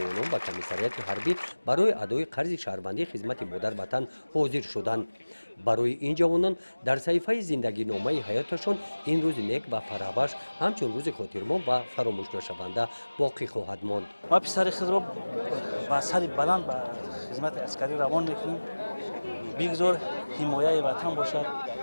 به کمیسریات حربی برای ادای قرض شهروندی خدمت مادر وطن حاضر شدند. برای این جوانان در صحیفه زندگی نامه حیاتشان این روز نیک و فرابخش همچون روز خاطرمان و فراموش نشونده باقی خواهد ماند. ما پسر خود را با سر بلند به خدمت عسکری روان میکنیم. بگذار حمایت وطن باشد.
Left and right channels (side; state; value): both; inverted; correlation -1.00